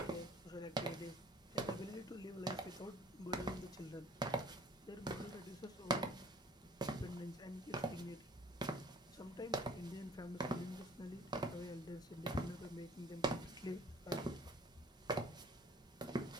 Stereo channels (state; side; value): normal; both; correlation 0.51